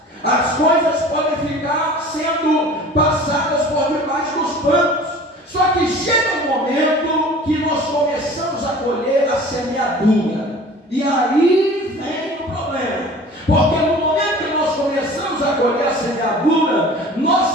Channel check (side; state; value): both; normal; correlation 0.43